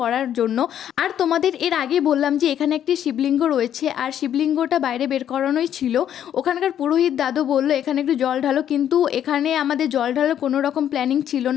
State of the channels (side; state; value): right; quieter; 10.2 dB